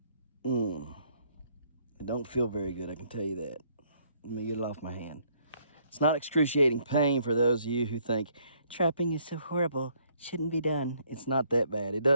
It don't feel very good, I can tell you that. Let me get it off my hand. It's not excruciating pain for those of you who think trapping is so horrible, shouldn't be done. It's not that bad. It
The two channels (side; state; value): both; inverted; correlation -0.67